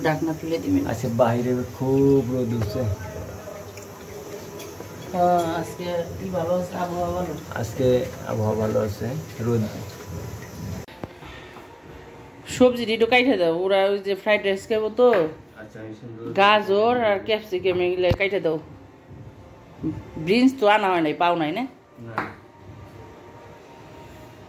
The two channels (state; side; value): identical; both; correlation 1.00